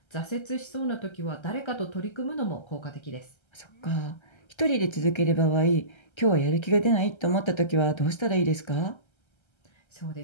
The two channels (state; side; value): late; right; 1.3 ms